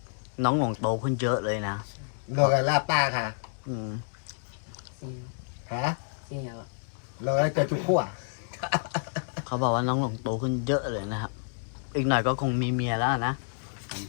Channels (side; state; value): right; silent; digital silence